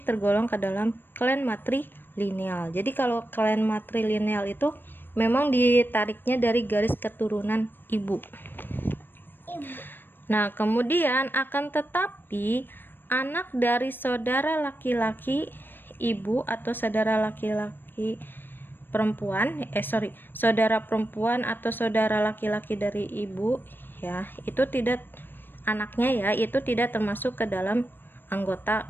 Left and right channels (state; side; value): late; right; 0.095 ms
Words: tergolong ke dalam klan matrilineal. Jadi kalau klan matrilineal itu memang ditariknya dari garis keturunan ibu. Nah, kemudian akan tetapi anak dari saudara laki-laki ibu atau saudara laki-laki perempuan, saudara perempuan atau saudara laki-laki dari ibu ya, itu tidak, anaknya ya, itu tidak termasuk ke dalam anggota